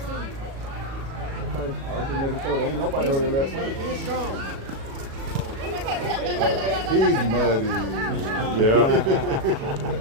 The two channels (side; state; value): left; late; 36 ms